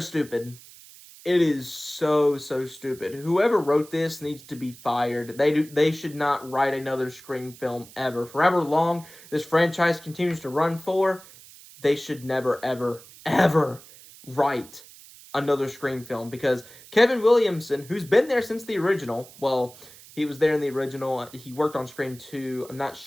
It is so, so stupid. Whoever wrote this needs to be fired. They should not write another Scream film ever. For however long this franchise continues to run for, they should never, ever, ever write another Scream film, because Kevin Williamson, who's been there since the original, well, he was there in the original. He worked on Scream 2. I'm not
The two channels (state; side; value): noise; right; hiss, 20 dB below the sound